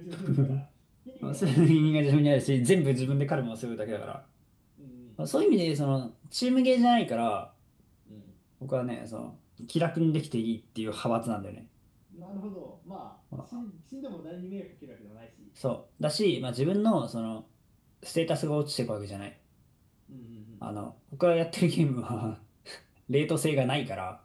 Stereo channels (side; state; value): both; identical; correlation 1.00